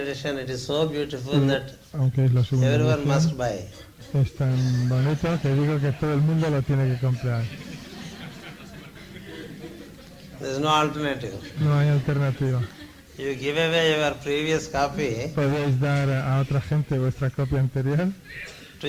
it is so beautiful that Aunque es la segunda everyone must edición, buy. es tan bonito que digo que todo el mundo lo tiene que comprar. There is no alternative. No hay alternativa. You give away your previous copy Podéis dar a otra gente vuestra copia anterior, to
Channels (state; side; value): identical; both; correlation 1.00